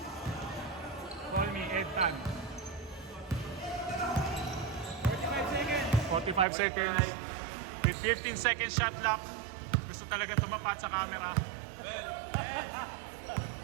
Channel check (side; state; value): left; drops out; at 6.5 s